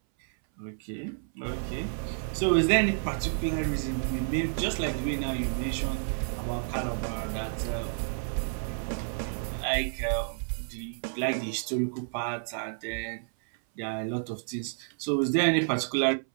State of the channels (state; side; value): silent; left; 58 dB below the other